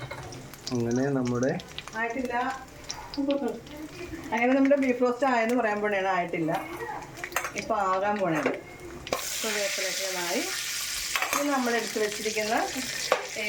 അങ്ങനെ നമ്മുടെ ആയിട്ടില്ല. അങ്ങനെ നമ്മുടെ ബീഫ് റോസ്റ്റ് ആയെന്ന് പറയാൻ പോണേണ്, ആയിട്ടില്ല, ഇപ്പോൾ ആകാൻ പോണേണ്. ഇപ്പോൾ വേപ്പിലൊക്കെ ആയി. ഇനി നമ്മൾ എടുത്ത് വെച്ചിരിക്കുന്ന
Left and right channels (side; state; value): both; identical; correlation 1.00